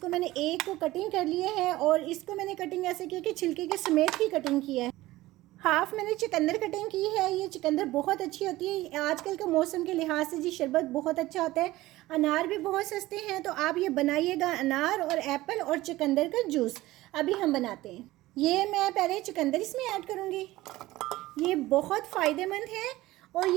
मैंने एक को कटिंग कर लिए है और इसको मैंने कटिंग ऐसे की कि छिलके के समेत ही कटिंग किया है। हाफ मैंने चुकंदर कटिंग की है। ये चुकंदर बहुत अच्छी होती है आजकल के मौसम के लिहाज से जी, शरबत बहुत अच्छा होता है। अनार भी बहुत सस्ते हैं, तो आप ये बनाइएगा, अनार और एप्पल और चुकंदर का जूस। अभी हम बनाते हैं। ये मैं पहले चुकंदर इसमें ऐड करूँगी। ये बहुत फ़ायदेमंद है और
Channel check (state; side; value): quieter; left; 17.6 dB